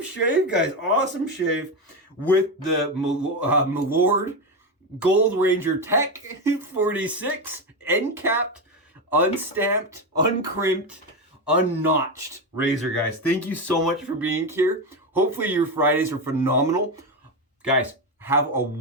guys. Awesome shave with the Milord Gold Ranger Tech 46 end capped, unstamped, uncrimped, unnotched razor, guys. Thank you so much for being here. Hopefully your Fridays are phenomenal. Guys, have a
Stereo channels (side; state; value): both; normal; correlation 0.13